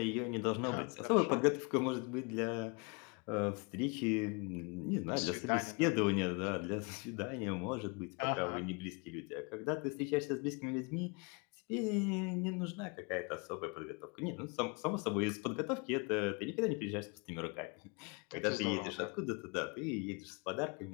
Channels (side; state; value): right; quieter; 31.9 dB